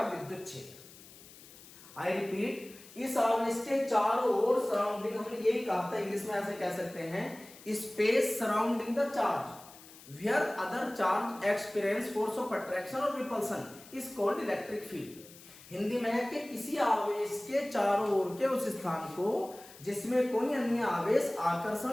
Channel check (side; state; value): left; noise; hiss, 20 dB below the sound